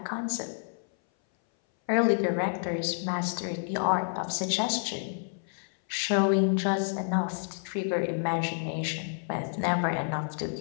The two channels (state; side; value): silent; right; 58 dB below the other